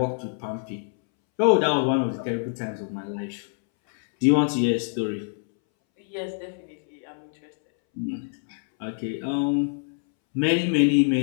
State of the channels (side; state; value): right; silent; 62 dB below the other